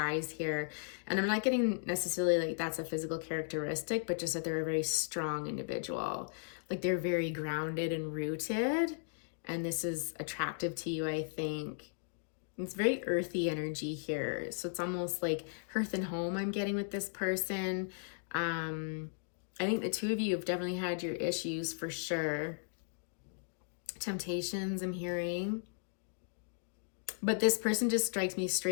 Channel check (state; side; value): silent; right; digital silence